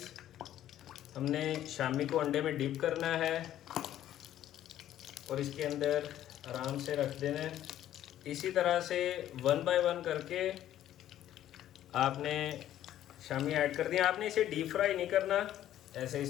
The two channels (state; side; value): quieter; right; 12.2 dB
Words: हमने शामी को अंडे में डिप करना है और इसके अंदर आराम से रख देना है। इसी तरह से 1 बाय 1 करके आपने शामी ऐड कर दिया। आपने इसे डीप फ्राई नहीं करना, ऐसे